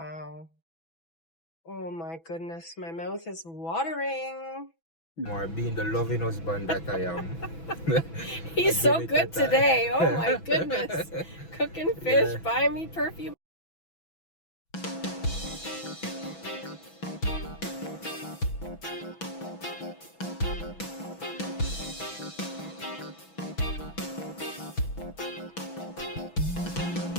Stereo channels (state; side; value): late; right; 6.1 ms